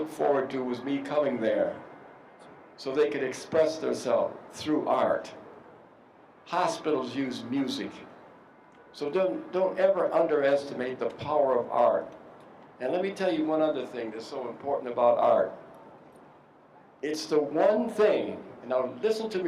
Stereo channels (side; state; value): both; identical; correlation 1.00